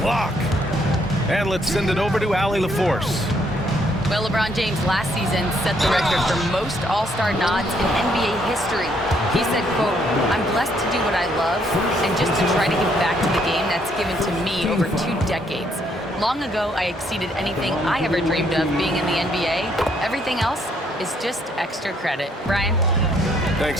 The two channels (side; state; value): both; normal; correlation 0.69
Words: block. And let's send it over to Allie LaForce. Well, LeBron James last season set the record for most All-Star nods in NBA history. He said, quote, "I'm blessed to do what I love and just to try to give back to the game that's given to me over 2 decades. Long ago, I exceeded anything I ever dreamed of being in the NBA. Everything else is just extra credit." Brian?